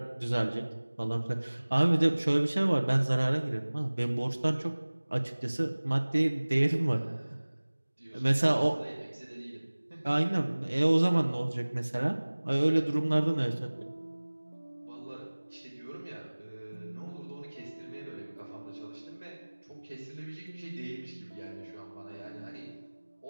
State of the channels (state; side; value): inverted; both; correlation -1.00